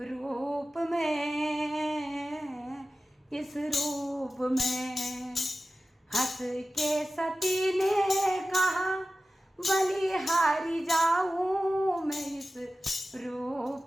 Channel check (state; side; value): normal; both; correlation 0.95